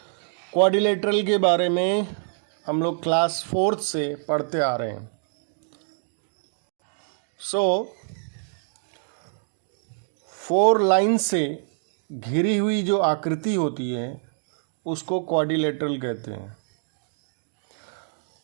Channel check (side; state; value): left; silent; digital silence